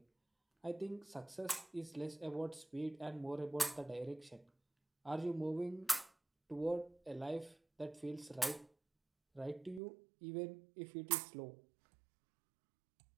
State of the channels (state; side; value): drops out; left; at 9.8 s